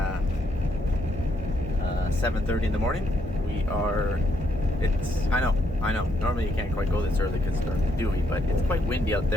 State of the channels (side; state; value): both; normal; correlation 0.74